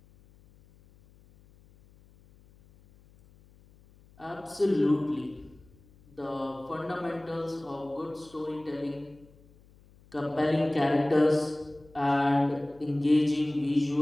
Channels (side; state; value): left; noise; hum, 27 dB below the sound